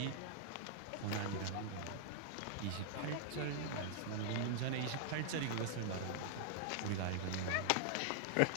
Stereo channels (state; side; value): different; both; correlation -0.01